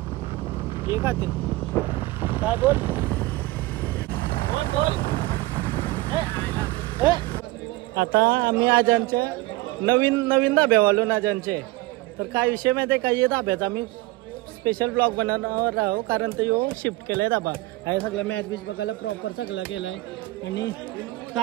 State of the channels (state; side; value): quieter; left; 20.0 dB